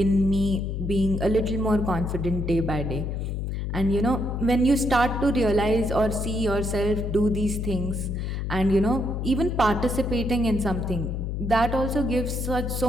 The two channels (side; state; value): left; noise; hum, 3 dB below the sound